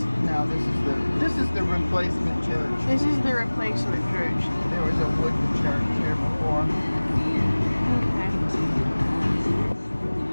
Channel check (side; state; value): both; inverted; correlation -1.00